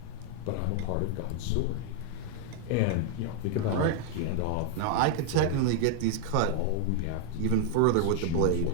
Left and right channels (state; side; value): different; both; correlation 0.00